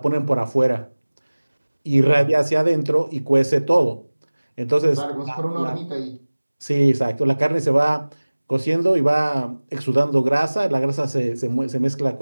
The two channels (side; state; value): both; inverted; correlation -1.00